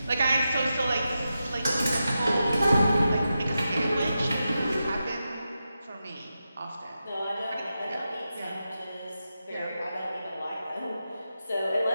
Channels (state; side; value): inverted; both; correlation -0.89